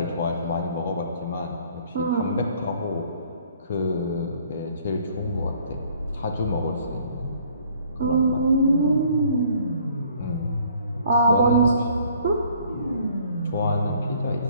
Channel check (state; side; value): inverted; both; correlation -0.58